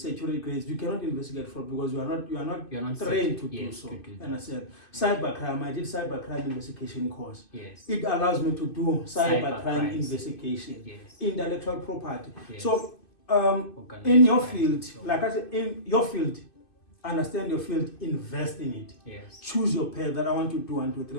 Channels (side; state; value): right; late; 2.5 ms